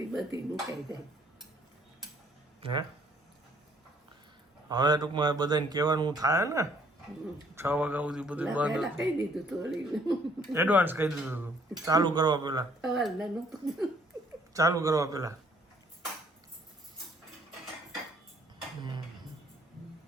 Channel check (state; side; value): normal; both; correlation 0.62